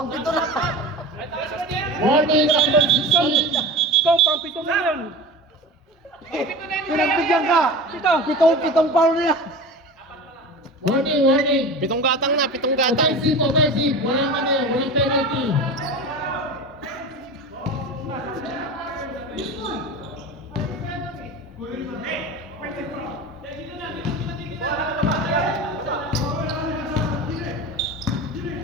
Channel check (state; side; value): normal; both; correlation 0.32